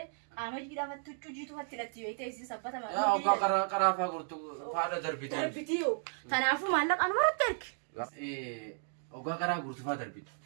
أما جيدا فتوچو جيتو فتلتي ويته سبتا ما يا أوكا كرا فاقرتو فادا دربيتو دربيتيو تنافو مالك أنا ما ترجع أوكا كرا قرتو فادا دربيت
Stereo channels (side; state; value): left; silent; digital silence